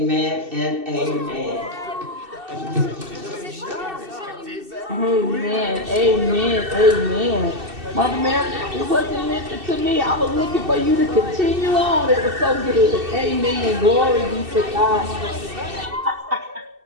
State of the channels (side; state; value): left; late; 2.7 ms